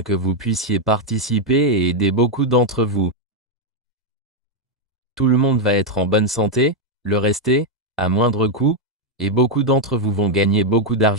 que vous puissiez participer et aider beaucoup d'entre vous. Tout le monde va être en bonne santé, le rester, à moindre coût, et beaucoup d'entre vous vont gagner beaucoup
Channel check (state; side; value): normal; both; correlation 0.01